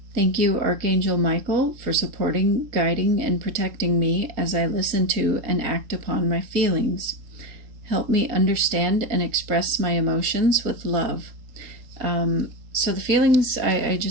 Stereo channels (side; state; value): left; late; 3.8 ms